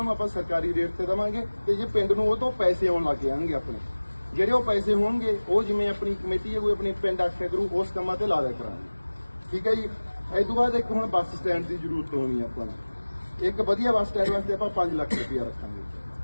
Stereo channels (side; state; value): both; inverted; correlation -1.00